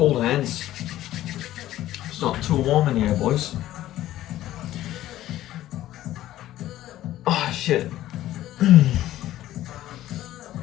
hands. It's not too warm in here, boys. Oh shit.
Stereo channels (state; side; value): quieter; right; 14.1 dB